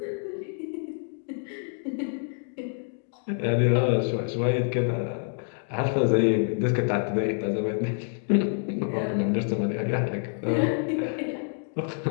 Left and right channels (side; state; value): right; silent; 60 dB below the other